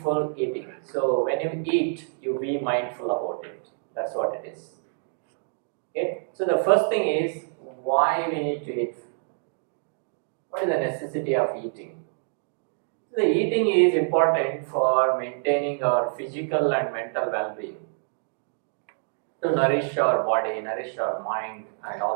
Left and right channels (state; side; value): silent; left; digital silence